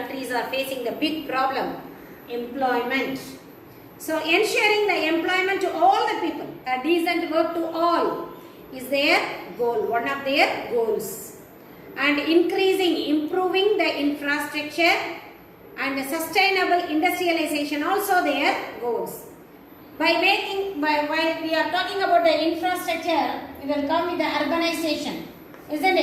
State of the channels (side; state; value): both; identical; correlation 1.00